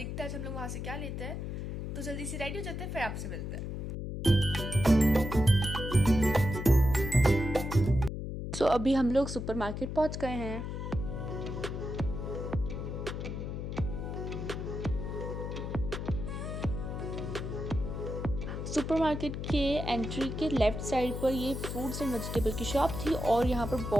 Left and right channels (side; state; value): left; noise; hum, 5 dB below the sound